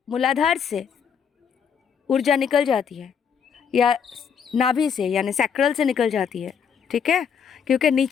मूलाधार से ऊर्जा निकल जाती है या नाभि से यानी सैक्रल से निकल जाती है, ठीक है, क्योंकि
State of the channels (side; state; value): right; quieter; 7.2 dB